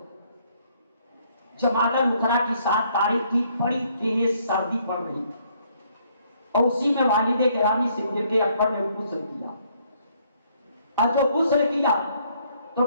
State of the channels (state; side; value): inverted; both; correlation -0.67